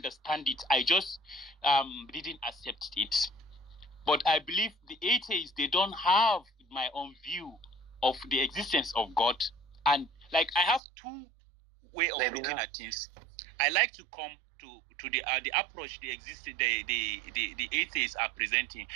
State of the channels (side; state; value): left; drops out; at 10.8 s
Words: it. I just didn't accept it. But I believe the atheists, they don't have my own view of the existence of God. And like I have two ways of looking at things. I like to come to the approach the atheists are presenting.